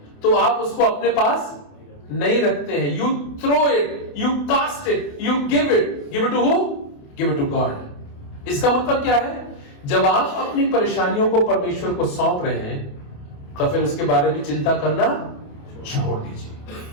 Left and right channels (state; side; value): late; right; 28 ms